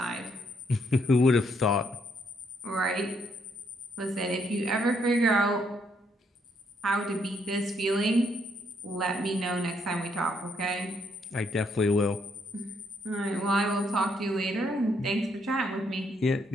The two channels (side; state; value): both; normal; correlation 0.73